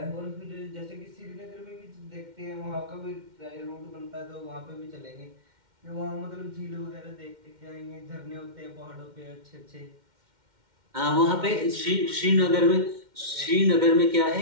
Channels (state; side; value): late; left; 2.1 ms